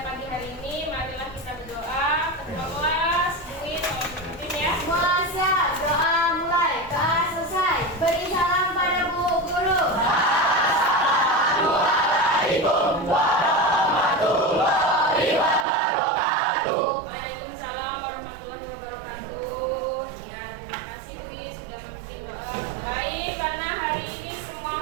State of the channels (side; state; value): left; drops out; at 15.7 s